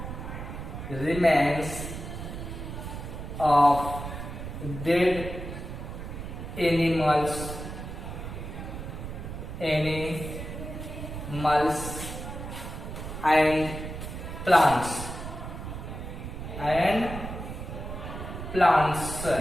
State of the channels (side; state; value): right; noise; rumble, 8 dB below the sound